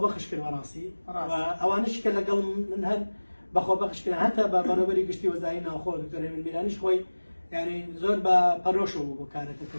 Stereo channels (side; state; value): both; inverted; correlation -1.00